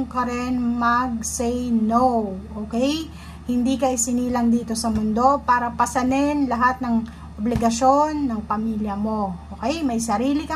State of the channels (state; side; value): identical; both; correlation 1.00